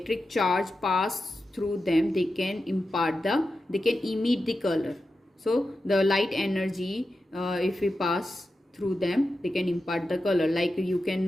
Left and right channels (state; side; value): normal; both; correlation 0.91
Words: charge pass through them. They can emit the color. So the light energy, if we pass through them, they can impart the color. Like you